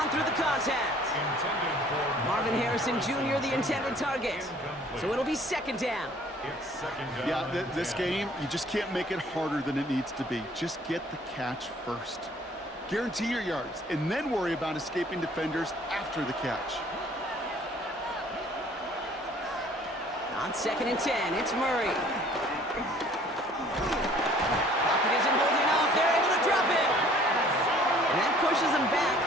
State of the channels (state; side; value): normal; both; correlation 0.55